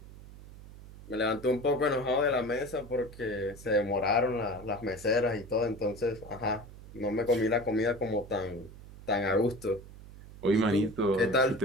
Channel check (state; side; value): noise; right; hum, 17 dB below the sound